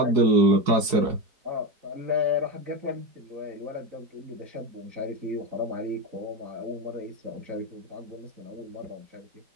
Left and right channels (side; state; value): left; late; 4.7 ms